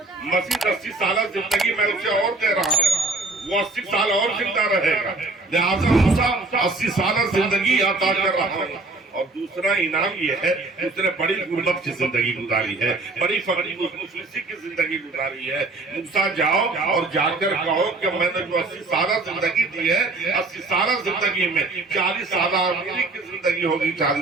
مزید 80 سالہ زندگی میں اسے اور دے رہا ہوں، وہ 80 سال اور زندہ رہے گا، لہٰذا موسیٰ 80 سالہ زندگی عطا کر رہا ہوں۔ اور دوسرا انعام یہ ہے کہ اس نے بڑی غربت کی زندگی گزاری ہے، بڑی فقری مفلسی کی زندگی گزاری ہے۔ موسیٰ جاؤ اور جا کر کہو کہ میں نے جو 80 سالہ زندگی دی ہے، 80 سالہ زندگی میں 40 سالہ امیری کی زندگی ہوگی،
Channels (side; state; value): left; quieter; 3.3 dB